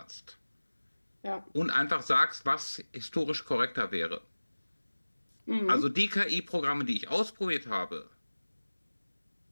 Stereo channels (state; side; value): inverted; both; correlation -1.00